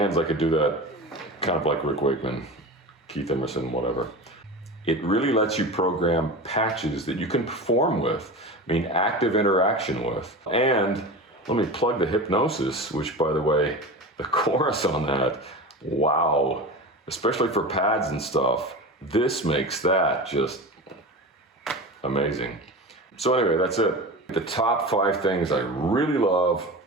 I could do that kind of like Rick Wakeman, Keith Emerson, whatever. It really lets you program patches that you can perform with, I mean, active interaction with. And let me plug the hypnosis, which, by the way, the chorus on that, wow, especially for pads and stuff, this makes that just, amazing. So anyway, that's it. The top 5 things I really love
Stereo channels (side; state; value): both; normal; correlation 0.29